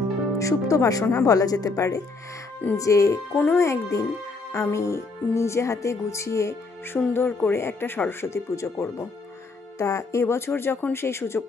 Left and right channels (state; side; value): quieter; right; 3.8 dB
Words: সুপ্ত বাসনা বলা যেতে পারে, যে কোনো একদিন আমি নিজে হাতে গুছিয়ে সুন্দর করে একটা সরস্বতী পুজো করব। তা এবছর যখন সেই